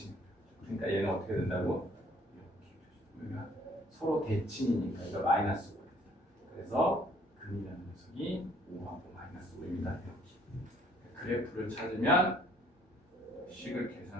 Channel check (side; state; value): both; normal; correlation 0.61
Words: 그러니까 얘는 어떻게 된다고? 그러니까 서로 대칭이니까 이거 마이너스 5. 그래서 근이라는 녀석이 5하고 마이너스 5입니다. 그래프를 찾으면 식을